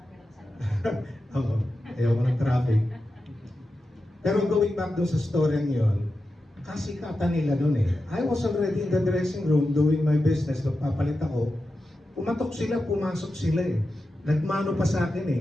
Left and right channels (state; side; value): normal; both; correlation 0.91